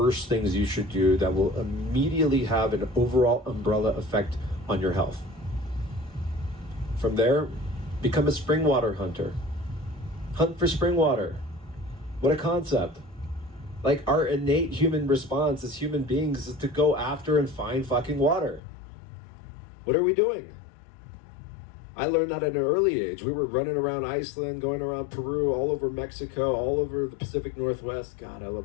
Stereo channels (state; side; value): drops out; right; at 18.6 s